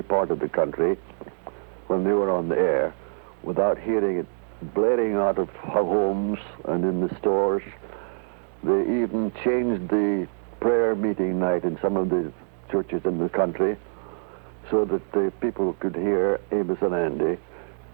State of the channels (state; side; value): silent; left; 62 dB below the other